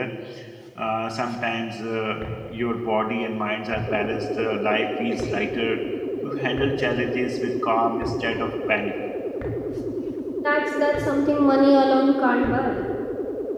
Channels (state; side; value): identical; both; correlation 1.00